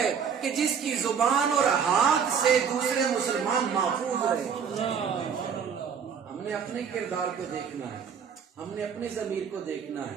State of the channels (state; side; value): quieter; left; 6.9 dB